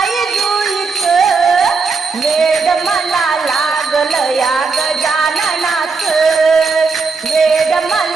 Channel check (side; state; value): left; quieter; 4.6 dB